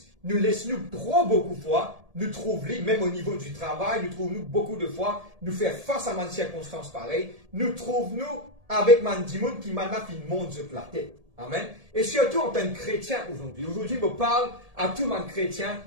nous laissons beaucoup de fois, nous trouvons, même au niveau du travail, nous trouvons beaucoup de fois, nous faire face à une circonstance pareille, nous trouvons avec Mandimoun qui m'a fait une montre de la tête. Amen. Et surtout en tant que chrétien aujourd'hui. Aujourd'hui, je parle à tout le monde chrétien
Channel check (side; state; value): left; late; 1.7 ms